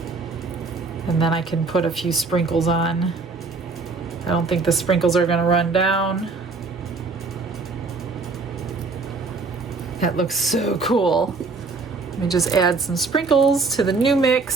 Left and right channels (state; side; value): quieter; left; 4.2 dB